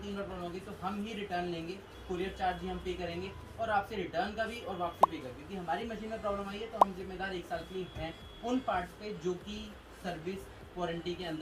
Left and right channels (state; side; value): identical; both; correlation 1.00